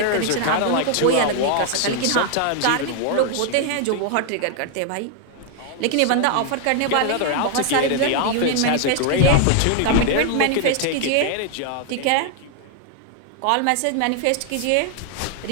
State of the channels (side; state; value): both; different; correlation 0.00